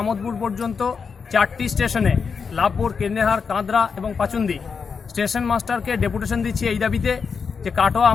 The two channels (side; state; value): right; quieter; 5.7 dB